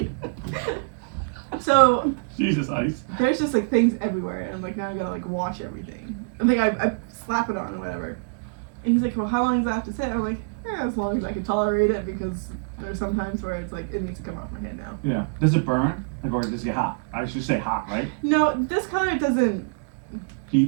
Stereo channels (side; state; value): left; quieter; 36.5 dB